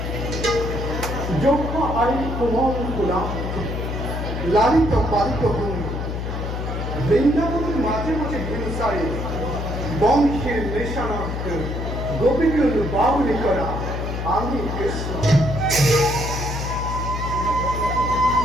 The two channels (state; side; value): noise; left; hum, 4 dB below the sound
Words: যোগ্য আই কোমল কুলাঙ্ক লালিত পালিত হন বৃন্দাবনের মাঝে মাঝে হিংসায় বংশের নেশানাক্ত গোপীকুল বাউলি করা আমি কৃষ্ণ